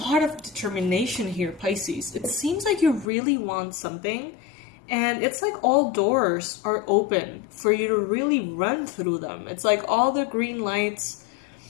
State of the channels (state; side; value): drops out; right; at 3.1 s